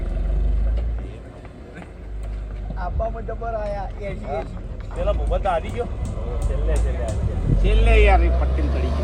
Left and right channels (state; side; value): identical; both; correlation 1.00